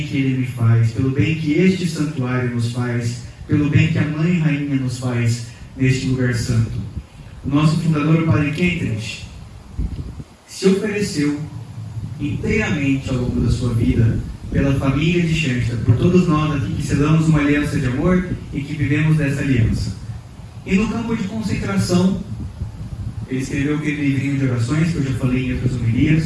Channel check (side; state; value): both; identical; correlation 1.00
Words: que Ele me faz, pelo bem que este santuário nos faz, pelo bem que a Mãe Rainha nos faz neste lugar santo. O nosso fundador, o Padre Kentridge, se ofereceu inteiramente ao longo da sua vida pela família de Schenster, por todos nós aqui que selamos uma aliança de amor e que vivemos dessa aliança. E no campo de concentração, ele escreveu aquele livrinho de orações que eu já falei em outras